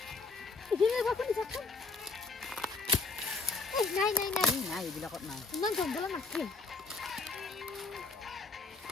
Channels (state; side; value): quieter; right; 4.1 dB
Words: নাই নাই নাই নাই এইবিলাকত নাই ইমান জংঘলত নাথে